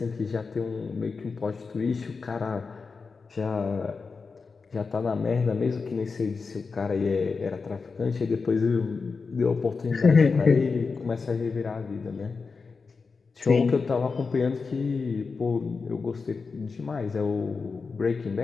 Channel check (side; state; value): right; quieter; 4.7 dB